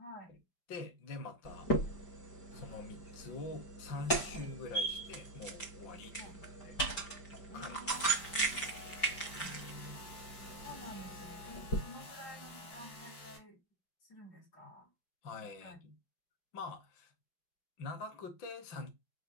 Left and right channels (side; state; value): right; late; 5.1 ms